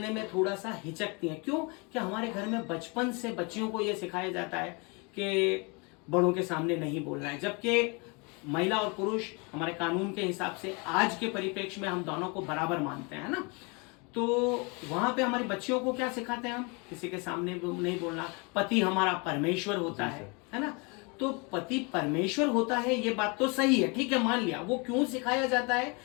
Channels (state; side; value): quieter; right; 30.7 dB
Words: में थोड़ा सा हिचकती हैं। क्यों? कि हमारे घर में बचपन से बच्चियों को ये सिखाया जाता है कि बड़ों के सामने नहीं बोलना है, जबकि महिला और पुरुष हमारे कानून के हिसाब से आज के परिप्रेक्ष्य में हम दोनों को बराबर मानते हैं ना। तो वहां पे हमारी बच्चियों को क्या सिखाते हैं हम? किसी के सामने नहीं बोलना, पति हमारा परमेश्वर होता है ना। तो पति परमेश्वर होता है, ये बात तो सही है, ठीक है, मान लिया। वो क्यों सिखाया जाता है?